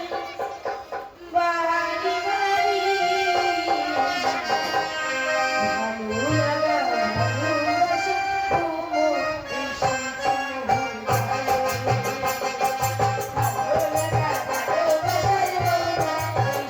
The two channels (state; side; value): identical; both; correlation 1.00